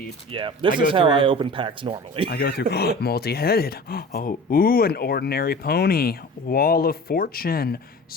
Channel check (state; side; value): normal; both; correlation 0.38